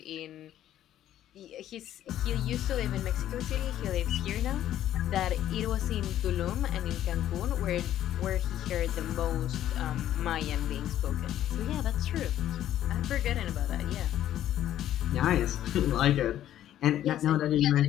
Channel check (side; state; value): right; quieter; 12.0 dB